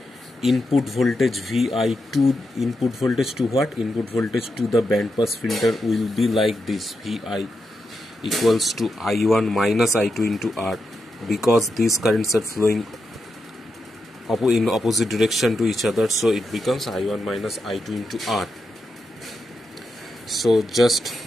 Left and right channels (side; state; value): both; normal; correlation 0.86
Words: input voltage Vi2, input voltage to what? Input voltage to the band pass filter will be like this: Vi equals to I1 minus I2 into R, because these currents are flowing in opposite direction to each other, so it becomes I1 minus I2 into R. So just